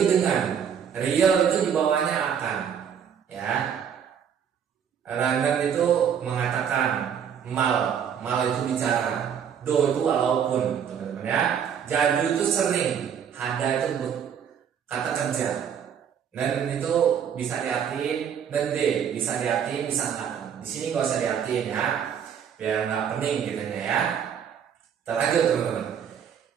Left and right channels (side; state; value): left; quieter; 8.0 dB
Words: dengan. Real itu di bawahnya akan. Ya. Ranen itu mengatakan. Mal itu bicara. Do itu walaupun teman-teman ya. Jadu itu sering. Hada itu kata kerja. Dan itu bisa diartiin. Dan D bisa diartiin bisa enggak. Di sini nggak usah diartiin ya, biar nggak pening gitu ya. Kita lanjut teman-teman.